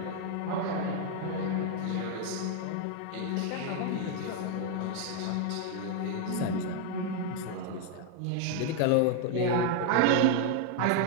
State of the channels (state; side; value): different; both; correlation 0.00